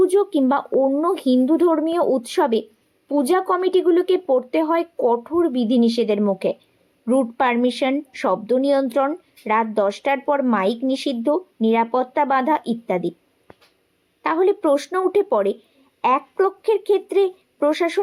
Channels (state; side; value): identical; both; correlation 1.00